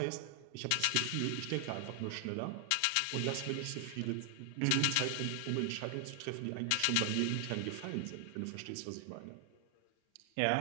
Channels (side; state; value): both; different; correlation 0.00